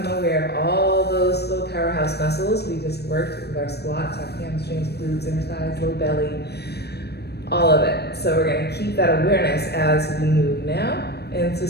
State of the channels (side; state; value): right; late; 0.47 ms